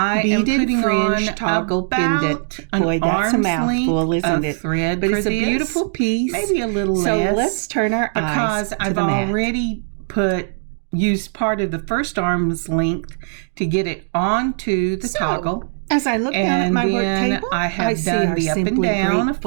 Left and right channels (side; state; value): left; silent; digital silence